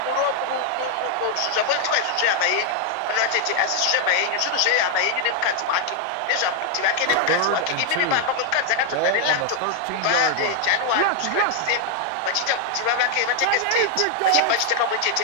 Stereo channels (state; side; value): different; both; correlation 0.00